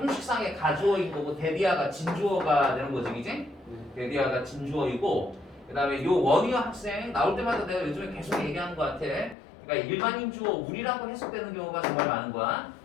가주어인 거고 데디아가 진주어가 되는 거지, 그지? 데디아가 진주어이고, 그 다음에 요 원희어 학생 나올 때마다 내가 요즘에 계속 얘기하는 것 같아. 그러니까 일반인 주어 우리라고 해석되는 경우가 정말 많은 거야.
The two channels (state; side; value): drops out; right; at 9.3 s